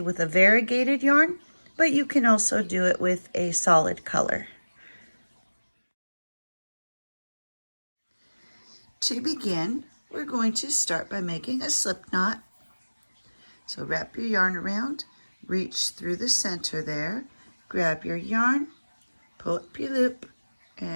with a variegated yarn, but you can also do it with a solid color. To begin, we're going to start by making a slip knot. So wrap your yarn around, reach through the center there, grab your yarn, pull up your loop,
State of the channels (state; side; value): inverted; both; correlation -1.00